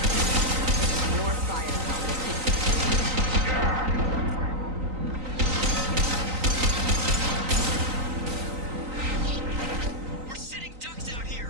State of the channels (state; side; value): late; left; 3.9 ms